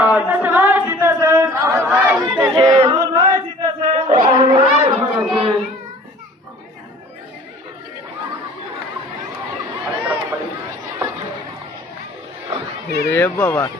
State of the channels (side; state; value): both; normal; correlation 0.48